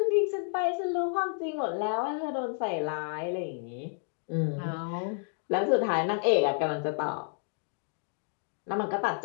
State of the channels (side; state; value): right; silent; 57 dB below the other